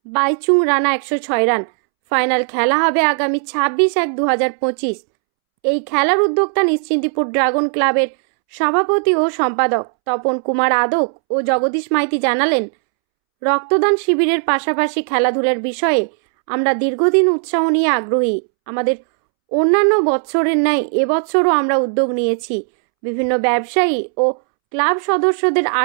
বাইচুং রানা 106 রান। ফাইনাল খেলা হবে আগামী 26/1/2025। এই খেলার উদ্যোক্তা নিশ্চিন্তিপুর ড্রাগন ক্লাবের সভাপতি ও সম্পাদক তপন কুমার আদক ও জগদীশ মাইতি জানালেন, রক্তদান শিবিরের পাশাপাশি খেলাধুলার বিষয়ে আমরা দীর্ঘদিন উৎসাহ নিয়ে আগ্রহী। আমাদের অন্যান্য বছরের ন্যায় এবছরও আমরা উদ্যোগ নিয়েছি। বিভিন্ন ব্যবসায়ী ও ক্লাব সদস্যদের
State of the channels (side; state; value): left; silent; 68 dB below the other